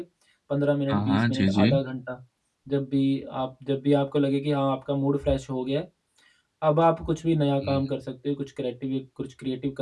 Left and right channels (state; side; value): identical; both; correlation 1.00